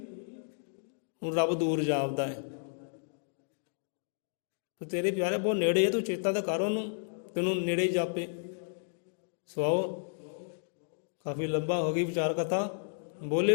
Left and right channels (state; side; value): silent; right; digital silence